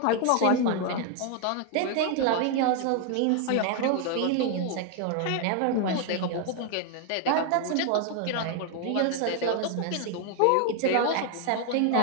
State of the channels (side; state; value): both; different; correlation 0.00